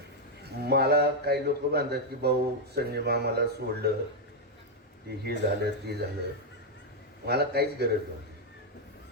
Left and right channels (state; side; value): normal; both; correlation 0.01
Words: मला काही लोक म्हणतात की भाऊ संजय मामाला सोडलं, ते हे झालं ते झालं. मला काहीच गरज